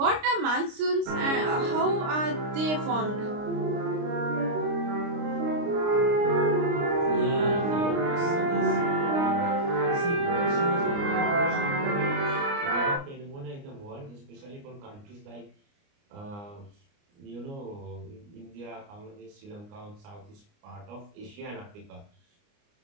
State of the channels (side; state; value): left; late; 29 ms